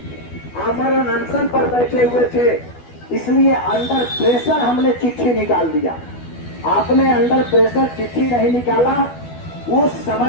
आमरण अनशन पर बैठे हुए थे, इसलिए अंडर प्रेशर हमने चिट्ठी निकाल दिया। आपने अंडर प्रेशर चिट्ठी नहीं निकाला। उस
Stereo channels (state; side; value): late; right; 12 ms